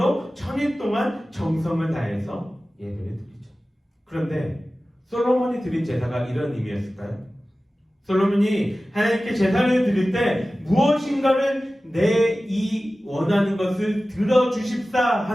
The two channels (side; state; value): both; normal; correlation 0.96